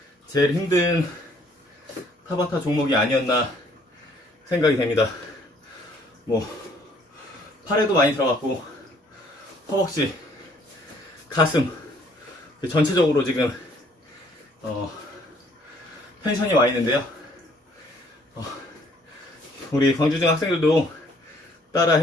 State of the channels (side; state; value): both; normal; correlation 0.62